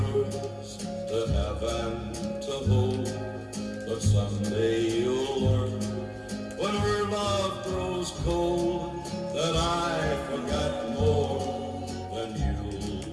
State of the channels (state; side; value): identical; both; correlation 1.00